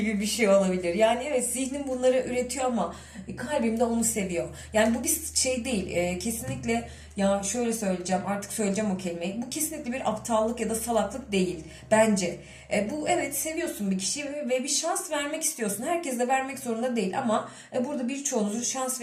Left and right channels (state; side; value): identical; both; correlation 1.00